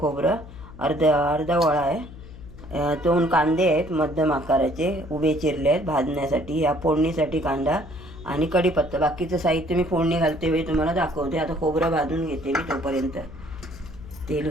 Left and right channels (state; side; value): noise; left; hum, 16 dB below the sound